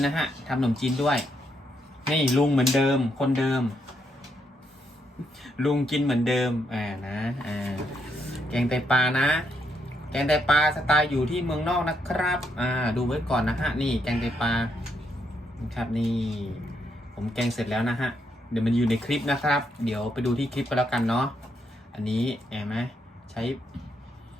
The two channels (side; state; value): both; normal; correlation 0.77